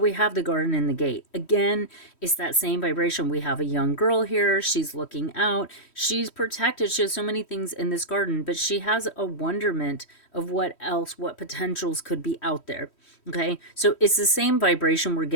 have the garden and the gate. Again, it's that same vibration. We have a young girl here. She's looking out. She's protected. She has so many things in this garden, but she has a wonderment of what else, what potentials could be out there. Okay, so it's the same vibration we're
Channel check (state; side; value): late; right; 3.1 ms